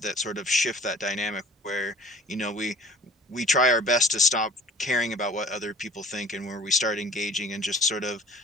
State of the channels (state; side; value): normal; both; correlation 0.46